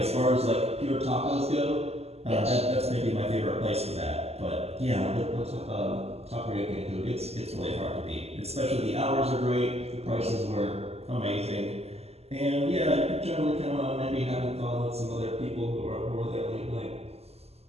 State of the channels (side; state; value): left; late; 0.30 ms